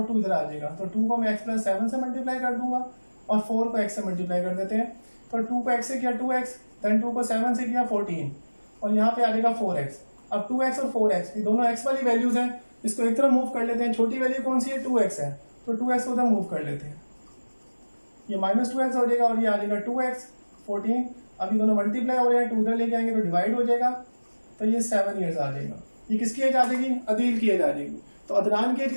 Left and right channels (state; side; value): inverted; both; correlation -1.00